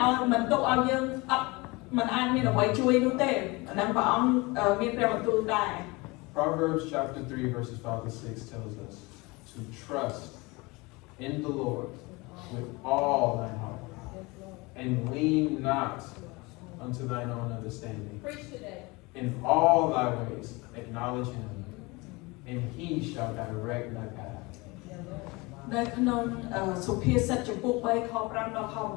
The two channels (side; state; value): right; quieter; 24.8 dB